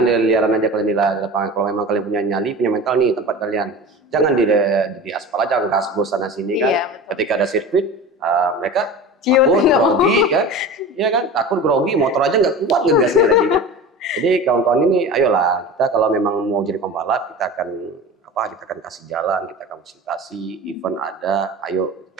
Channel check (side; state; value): both; normal; correlation 0.33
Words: di liaran aja kalian di lapangan. Kalau memang kalian punya nyali, punya mental nih tempat kalian. Jangan di aspal aja, gas sana sini kan. Ketika ada sirkuit, mereka takut grogi kan, ya kan, takut grogi, motor aja nggak kuat ngegasnya lagi kan. Jadi kawan-kawan ini, ayolah kita kalau memang mau jadi pembalap, kita akan kasih jalan, kita akan fasilitasi, event ada, ayo